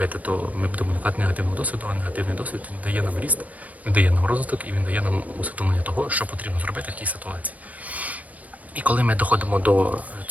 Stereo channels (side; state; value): left; late; 0.074 ms